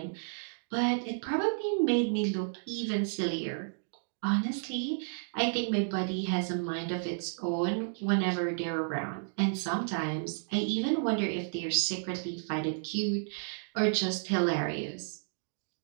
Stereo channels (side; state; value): left; silent; digital silence